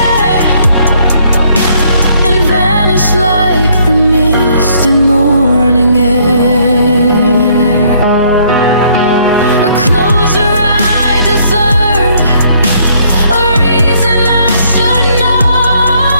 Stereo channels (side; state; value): both; inverted; correlation -0.66